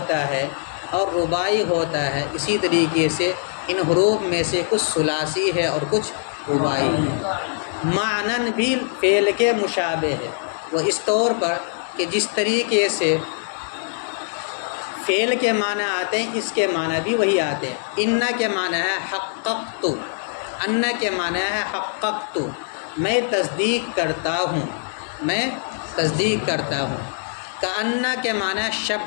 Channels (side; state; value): right; silent; digital silence